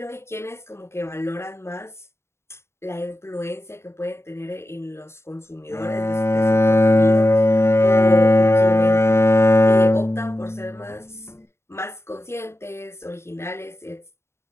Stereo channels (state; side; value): late; right; 0.13 ms